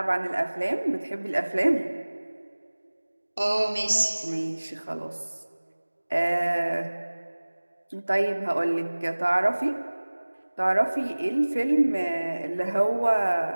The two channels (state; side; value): inverted; both; correlation -1.00